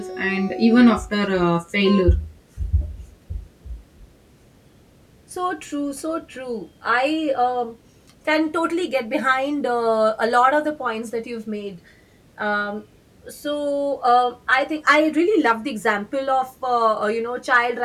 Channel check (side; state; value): both; identical; correlation 1.00